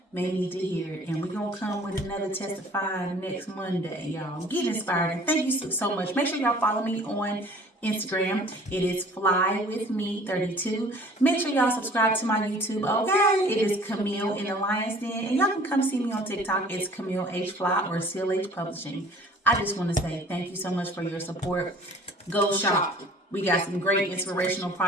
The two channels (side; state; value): both; normal; correlation 0.50